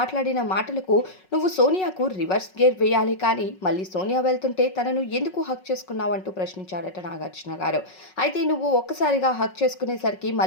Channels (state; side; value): late; right; 5.4 ms